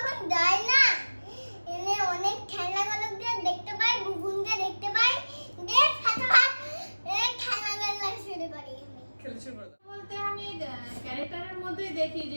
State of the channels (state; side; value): inverted; both; correlation -1.00